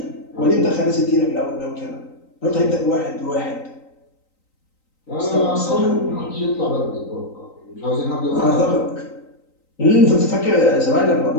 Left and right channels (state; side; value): late; right; 3.9 ms